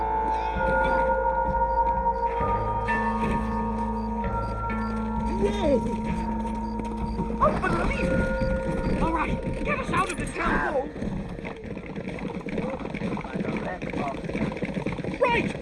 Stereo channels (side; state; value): both; identical; correlation 1.00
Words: Whoa! Unbelievable! All right, get us out of this town hall!